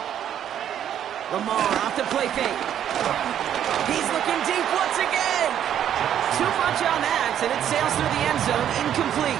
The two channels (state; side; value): quieter; left; 10.0 dB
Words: Lamar off the play fake. He's looking deep once again. Too much on that, and it sails through the end zone,